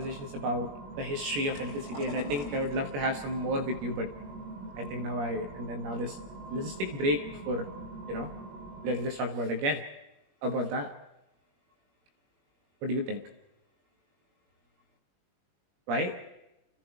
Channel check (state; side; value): late; left; 21 ms